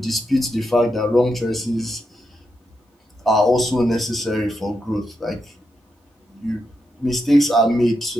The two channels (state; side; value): normal; both; correlation 0.84